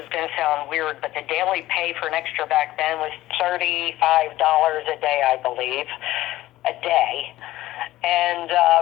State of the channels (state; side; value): quieter; right; 15.9 dB